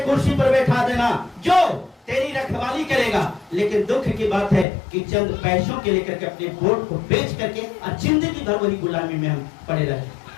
कुर्सी पर बैठा देना जो तेरी रखवाली करेगा। लेकिन दुख की बात है कि चंद पैसों के लेकर के अपने वोट को बेच करके और जिंदगी भर वही गुलामी में हम पड़े रहे।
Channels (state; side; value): drops out; right; at 4.7 s